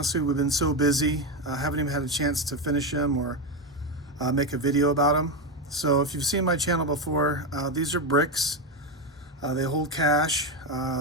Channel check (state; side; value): normal; both; correlation 0.11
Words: we've been so busy, haven't even had a chance to finish them or make a video about them. So if you've seen my channel before, these are bricks. They hold cash,